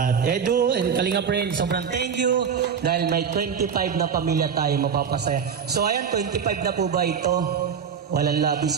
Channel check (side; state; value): left; quieter; 7.0 dB